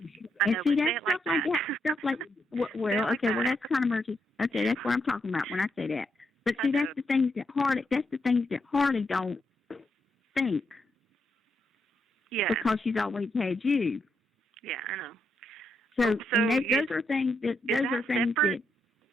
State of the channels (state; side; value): normal; both; correlation 0.80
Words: see, that's stuff like that. Stuff like, well, okay, well, that's kind of emergency. Okay, that's what I'm talking about when I say that. But see, that's the things that Harley don't think. Yeah. Because she's always had you. Yeah, I know. So those are things that